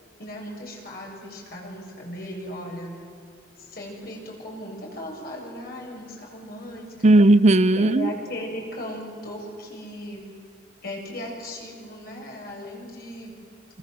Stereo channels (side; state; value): both; normal; correlation 0.72